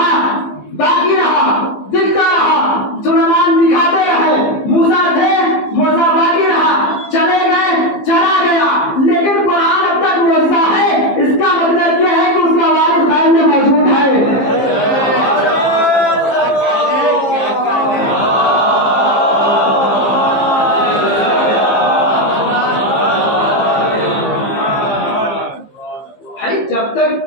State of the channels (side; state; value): right; late; 15 ms